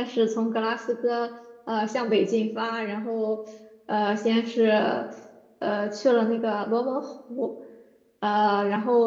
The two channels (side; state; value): both; identical; correlation 1.00